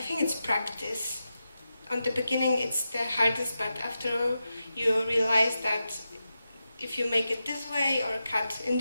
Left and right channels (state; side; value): inverted; both; correlation -0.90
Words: think it's practice. On the beginning it's the hardest, but after you realize that if you make it this way or cut in